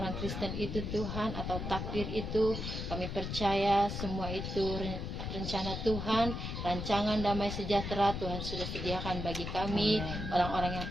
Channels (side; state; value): left; noise; rumble, 4 dB below the sound